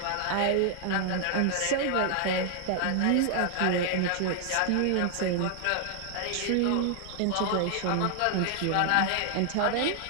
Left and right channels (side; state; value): both; different; correlation 0.00